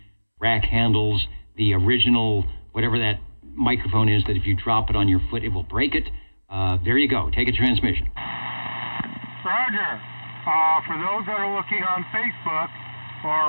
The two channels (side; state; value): both; inverted; correlation -1.00